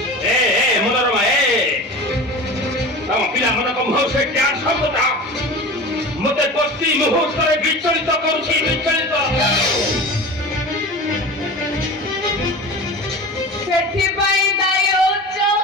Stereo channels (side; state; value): both; normal; correlation 0.33